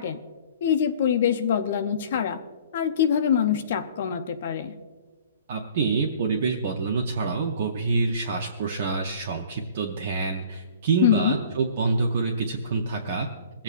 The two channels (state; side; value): inverted; both; correlation -0.49